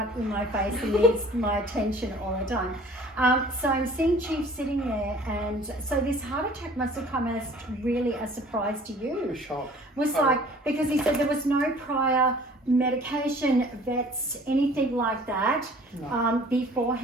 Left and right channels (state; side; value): normal; both; correlation 0.50